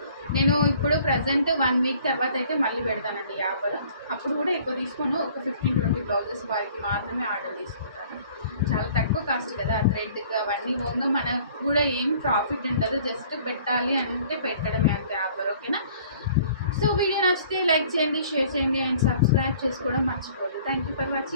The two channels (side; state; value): both; inverted; correlation -0.54